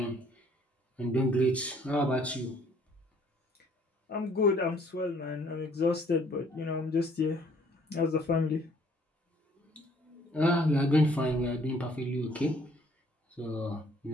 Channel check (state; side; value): normal; both; correlation 0.60